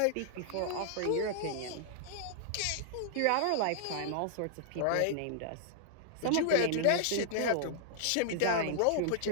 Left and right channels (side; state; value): both; different; correlation -0.01